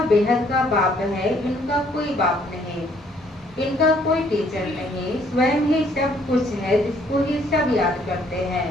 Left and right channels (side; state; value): both; normal; correlation 0.64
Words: बेहद का बाप है, इनका कोई बाप नहीं, इनका कोई टीचर नहीं, स्वयं ही सब कुछ है, जिसको ही सब याद करते हैं।